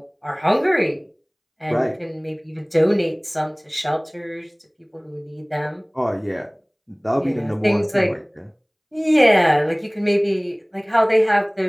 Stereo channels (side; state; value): both; identical; correlation 1.00